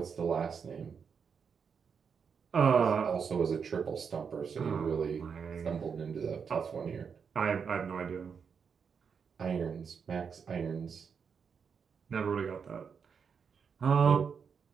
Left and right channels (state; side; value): quieter; left; 6.4 dB